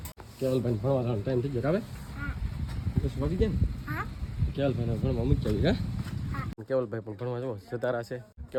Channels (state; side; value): identical; both; correlation 1.00